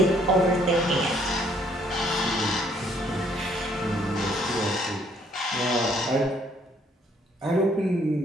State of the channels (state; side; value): normal; both; correlation 0.65